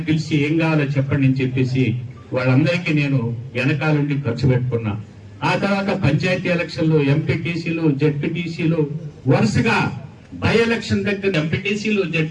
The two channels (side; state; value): both; identical; correlation 1.00